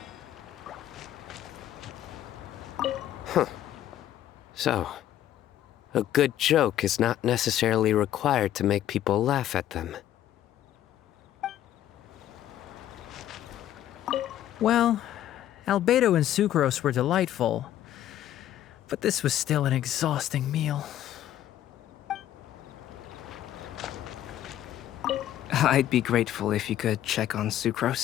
So, a good joke is not necessarily required to make people laugh at them. Well, Albedo and Sucrose were delightful, but this was still an exhausting meal. I'd be grateful if you could check on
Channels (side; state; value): right; quieter; 12.1 dB